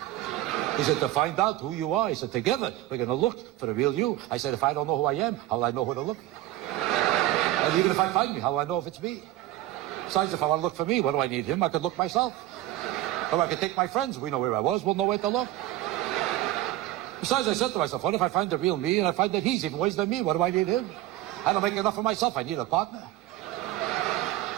He said, to find out who you are. He said, together we're going to look for the real you. I said, if I don't know who I am, how will I know who to look for? And even if I find me, how will I know if it's me? Besides, if I want to look for me, what do I need him? I could look myself. Or I could take my friends. We know where I was. We'll know where to look. Besides, I said to myself, what if I find the real me and I find that he's even worse than me? What do I need him? I don't make enough of myself. I need a partner.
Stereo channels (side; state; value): left; quieter; 15.2 dB